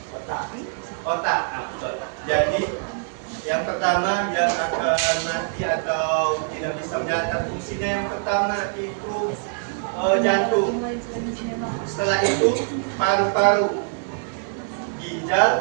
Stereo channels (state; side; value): silent; left; digital silence